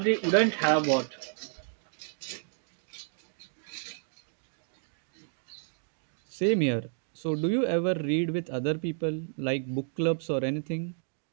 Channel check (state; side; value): silent; left; 57 dB below the other